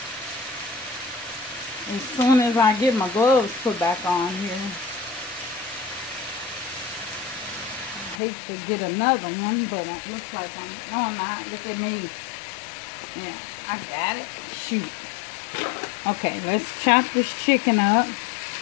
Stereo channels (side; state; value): right; drops out; at 8.2 s